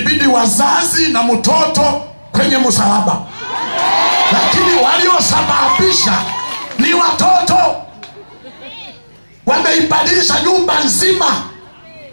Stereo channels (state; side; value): inverted; both; correlation -1.00